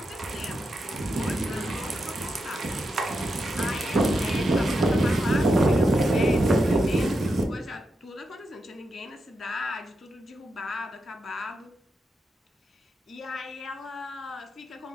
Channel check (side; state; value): both; normal; correlation 0.86